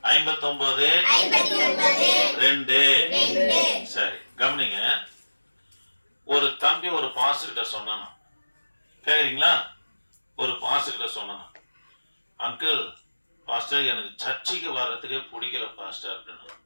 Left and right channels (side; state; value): both; inverted; correlation -1.00